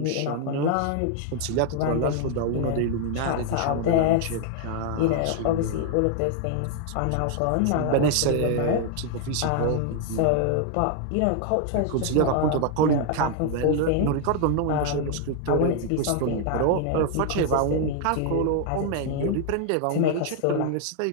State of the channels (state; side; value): different; both; correlation 0.00